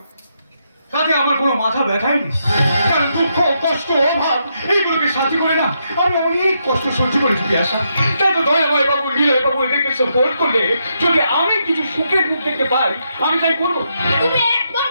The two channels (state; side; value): inverted; both; correlation -0.80